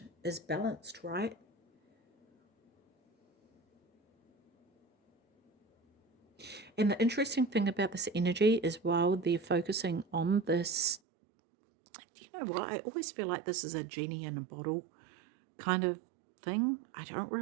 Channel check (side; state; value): left; drops out; at 11.0 s